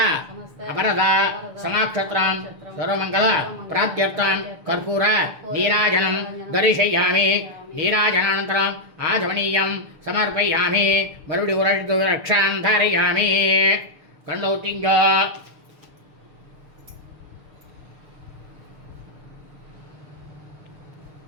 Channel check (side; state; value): left; late; 6.8 ms